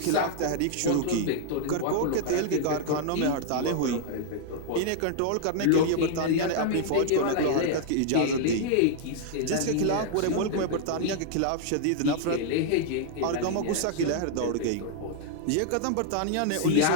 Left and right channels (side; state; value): both; different; correlation -0.01